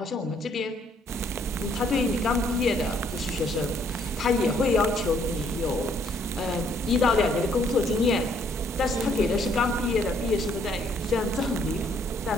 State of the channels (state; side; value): normal; both; correlation 0.67